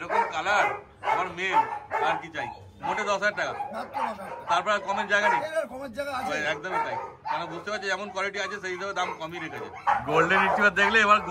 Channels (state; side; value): identical; both; correlation 1.00